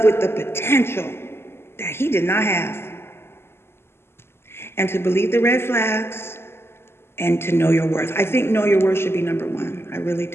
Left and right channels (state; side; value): late; right; 0.12 ms